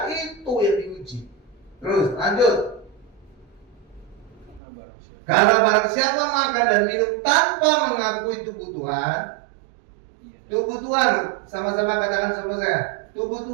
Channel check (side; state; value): left; drops out; at 4.6 s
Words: Itu yang diuji. Terus lanjut. Karena barang siapa makan dan minum tanpa mengakui tubuh Tuhan, tubuh Tuhan, sama-sama katakan sama saya, tubuh